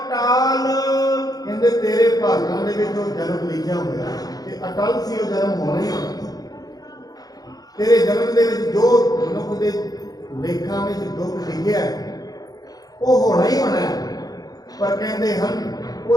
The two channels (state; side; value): late; right; 0.18 ms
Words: ਕਹਿੰਦੇ ਤੇਰੇ ਭਾਗਾਂ ਦੇ ਵਿੱਚ ਉਹ ਜਨਮ ਲਿਖਿਆ ਹੋਇਆ ਤੇ ਅਟਲ ਸੀ, ਉਹ ਜਨਮ ਹੋਣਾ ਹੀ ਹੋਣਾ। ਤੇਰੇ ਜਨਮ ਦੇ ਵਿੱਚ ਜੋ ਮਨੁੱਖ ਦੇ ਲੇਖਾਂ ਵਿੱਚ ਦੁੱਖ ਲਿਖਿਆ ਉਹ ਹੋਣਾ ਹੀ ਹੋਣਾ ਹੈ। ਪਰ ਕਹਿੰਦੇ ਹਨ ਉਹ